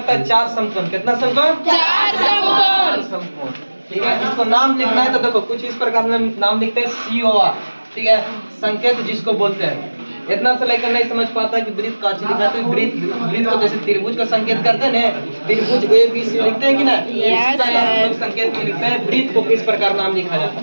है 4 समकोण। कितना समकोण? 4 समकोण, ठीक है। इसको नाम लिखना है तो देखो कुछ इस प्रकार में नाम लिखते हैं COR, ठीक है, संकेत जिसको बोलते हैं। इतना से लेकर नहीं समझ पाता कि ब्रीथ काची लिखा है, तो ब्रीथ को जैसे त्रिभुज का संकेत करते हैं ना, त्रिभुज ABC लिखते हैं कि ना, इसी प्रकार हम लोग संकेत में लिखते हैं ब्रीथ को किस प्रकार नाम लिखा जाता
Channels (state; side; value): inverted; both; correlation -1.00